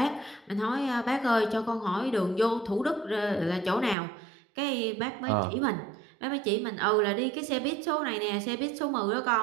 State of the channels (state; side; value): drops out; left; at 4.0 s